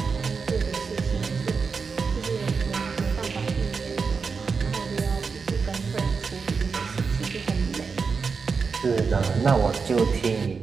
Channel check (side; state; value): left; quieter; 5.2 dB